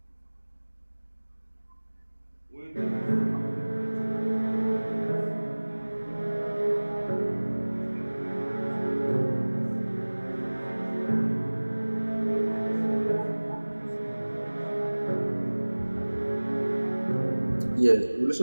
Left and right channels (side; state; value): both; inverted; correlation -1.00